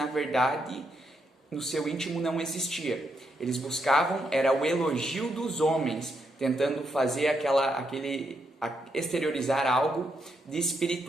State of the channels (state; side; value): normal; both; correlation 0.79